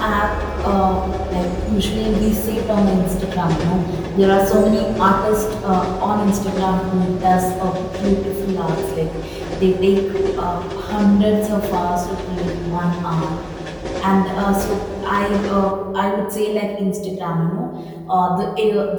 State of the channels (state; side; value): identical; both; correlation 1.00